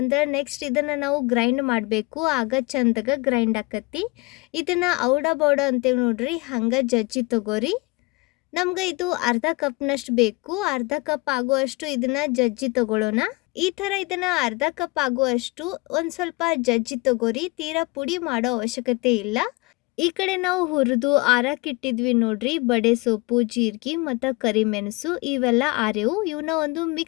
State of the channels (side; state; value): right; quieter; 25.5 dB